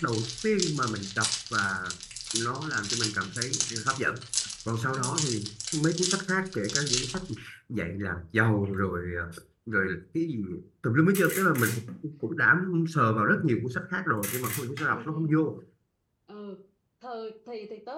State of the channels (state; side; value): identical; both; correlation 1.00